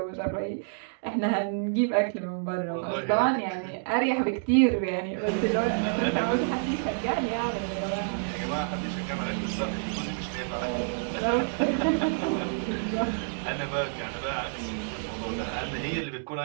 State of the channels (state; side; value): silent; left; digital silence